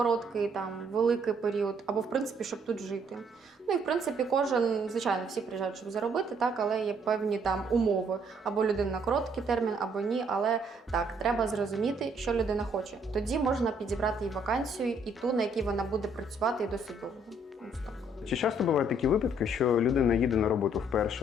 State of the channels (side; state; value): both; normal; correlation 0.66